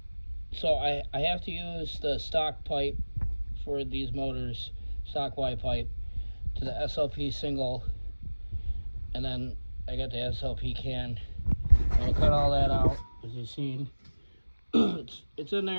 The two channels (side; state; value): both; inverted; correlation -1.00